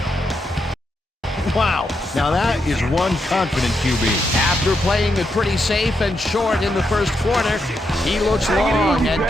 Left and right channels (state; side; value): normal; both; correlation 0.82